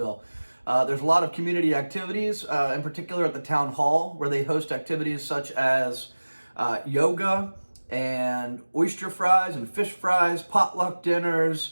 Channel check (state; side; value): inverted; both; correlation -1.00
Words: There's a lot of community activities, in particular at the town hall, where they host activities such as yoga and oyster fries and fish fries, potluck